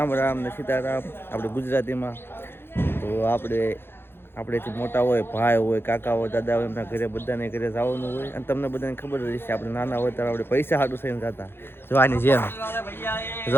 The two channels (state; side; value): late; right; 0.11 ms